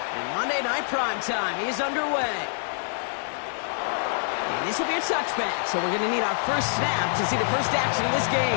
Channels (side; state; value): right; silent; digital silence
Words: Monday Night Primetime is underway. And this will be a touchback, so we're going to need our first snap to see the first action of this